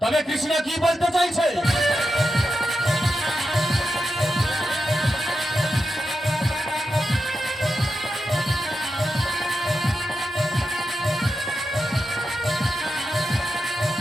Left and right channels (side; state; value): both; normal; correlation 0.89